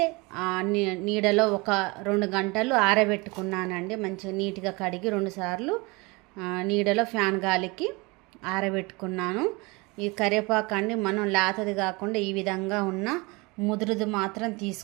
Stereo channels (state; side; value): quieter; left; 26.0 dB